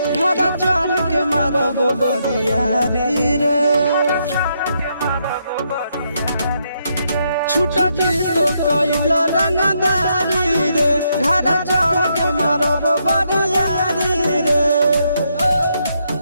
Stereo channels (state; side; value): inverted; both; correlation -0.77